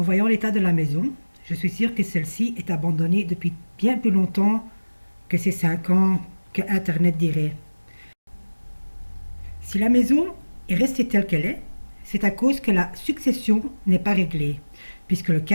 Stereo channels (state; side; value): inverted; both; correlation -1.00